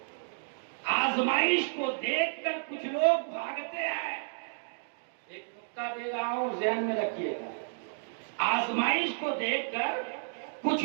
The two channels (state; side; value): silent; left; digital silence